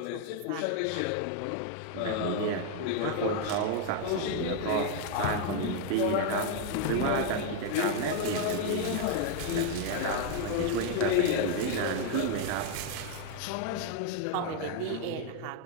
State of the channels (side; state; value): both; different; correlation 0.01